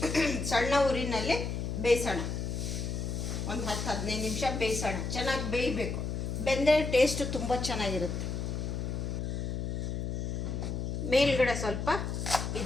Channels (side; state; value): left; noise; hum, 2 dB below the sound